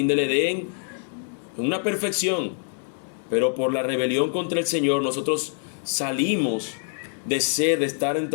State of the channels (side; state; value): right; silent; 62 dB below the other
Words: del Edén, en una perfección. Pero por la rebelión contra el Señor nosotros salimos de estar